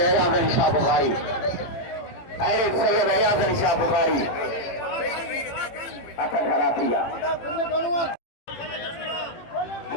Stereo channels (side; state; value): right; late; 18 ms